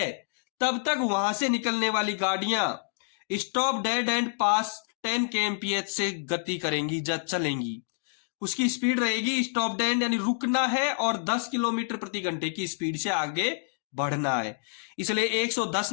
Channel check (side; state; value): right; silent; digital silence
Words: तब तक वहां से निकलने वाली गाड़ियां stop dead and pass 10 kmph से गति करेंगी, जब चलेंगी। उसकी स्पीड रहेगी स्टॉप डेड यानी रुकना है और 10 किलोमीटर प्रति घंटे की स्पीड से आगे बढ़ना है। इसलिए 110